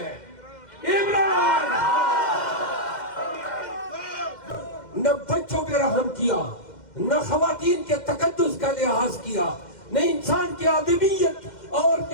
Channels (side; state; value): right; late; 2.1 ms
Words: عمران خان۔ نہ بچوں پہ رحم کیا، نہ خواتین کے تقدس کا لحاظ کیا، نہ انسان کی آدمیت اور